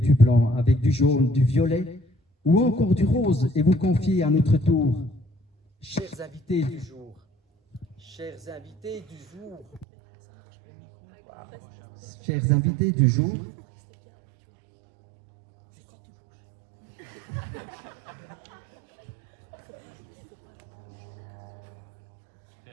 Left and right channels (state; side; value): drops out; left; at 9.9 s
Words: blanc, avec du jaune, du violet ou encore du rose et vous confier à notre tour. Chers invités du jour. Chers invités du jour. Chers invités du jour.